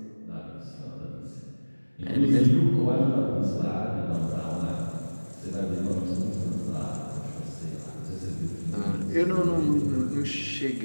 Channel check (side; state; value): both; inverted; correlation -1.00